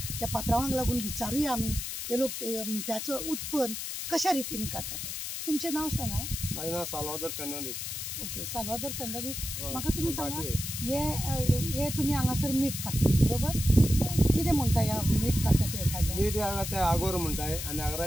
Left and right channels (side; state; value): left; noise; hiss, 5 dB below the sound